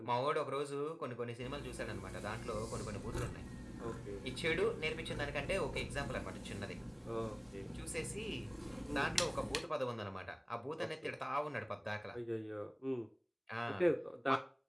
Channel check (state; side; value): identical; both; correlation 1.00